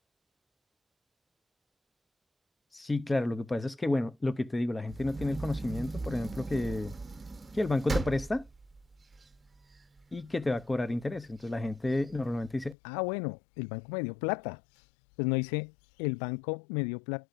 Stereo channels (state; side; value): drops out; right; at 12.8 s